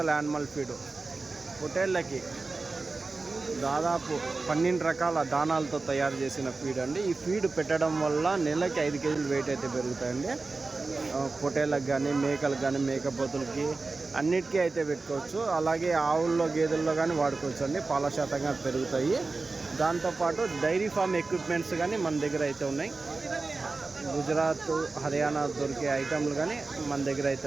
యానిమల్ ఫీడ్ పొట్టేళ్ళకి దాదాపు 12 రకాల దానాలతో తయారు చేసిన ఫీడ్ అండి. ఈ ఫీడ్ పెట్టడం వల్ల నెలకి 5 కేజీలు వెయిట్ అయితే పెరుగుతాయండి. పొట్టేళ్ళకి కానీ, మేకలకు కానీ, మేకపోతులకి అన్నిటికీ అయితే పెట్టుకోవచ్చు. అలాగే ఆవుల్లో, గేదెల్లో కానీ వాడుకోవచ్చు అండి. పాల శాతంగా పెరుగుతాయి. దాంతోపాటు డైరీ ఫామ్ ఎక్విప్మెంట్స్ కానీ మన దగ్గర అయితే ఉన్నాయి. గుజరాత్, హర్యానా దొరికే ఐటమ్లు కానీ మన దగ్గర అయితే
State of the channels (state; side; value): quieter; left; 3.7 dB